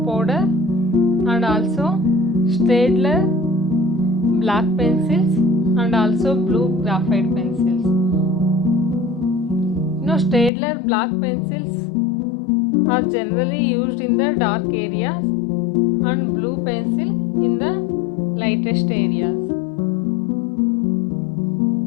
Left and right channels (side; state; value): right; drops out; at 10.5 s